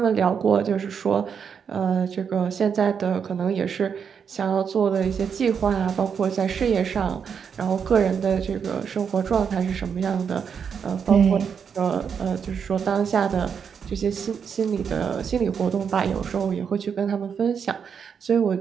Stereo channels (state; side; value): quieter; left; 6.9 dB